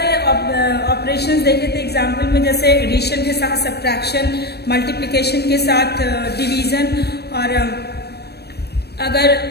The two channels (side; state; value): right; late; 0.47 ms